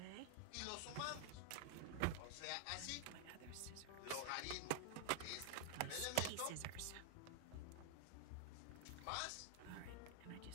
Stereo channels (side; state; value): both; different; correlation 0.00